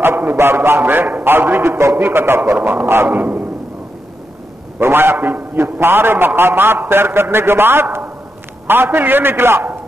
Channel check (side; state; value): both; normal; correlation 0.85